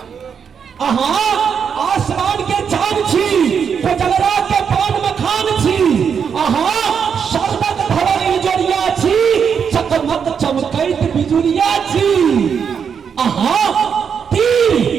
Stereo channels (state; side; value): quieter; left; 6.9 dB